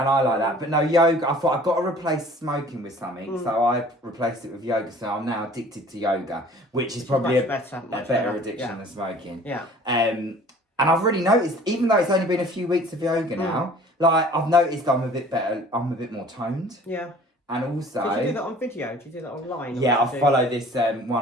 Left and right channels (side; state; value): both; normal; correlation 0.49